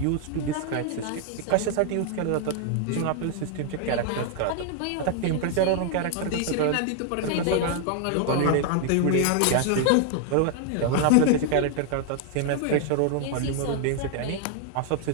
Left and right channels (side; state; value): both; different; correlation 0.00